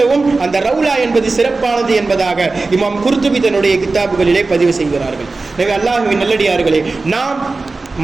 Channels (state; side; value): quieter; left; 3.6 dB